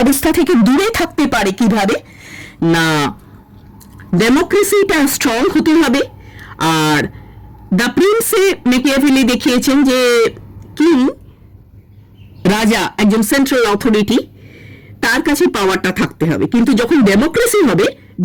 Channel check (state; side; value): identical; both; correlation 1.00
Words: থেকে দূরে থাকতে পারে কিভাবে না, ডেমোক্রেসিটা স্ট্রং হতে হবে। আর দ্য প্রিন্সে মেকিয়াভেলি দেখিয়েছেন যে কিং, রাজা, একজন সেন্ট্রাল অথরিটি, তার কাছে পাওয়ারটা থাকতে হবে, কিন্তু যখন ডেমোক্রেসি হবে,